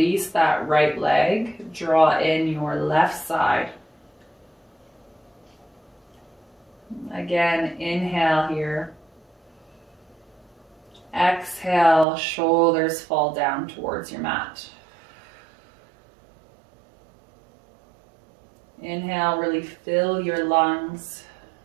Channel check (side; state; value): left; drops out; at 12.1 s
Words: that right leg. Draw in your left side. Again, inhale here. Exhale, shoulders fall down towards your mat. Inhale, really fill your lungs.